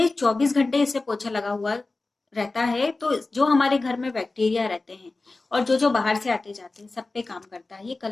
24 घंटे इससे पोछा लगा हुआ रहता है, तो जो हमारे घर में बैक्टीरिया रहते हैं और जो जो बाहर से आते जाते हैं सब पे काम करता है। ये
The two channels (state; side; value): quieter; right; 3.4 dB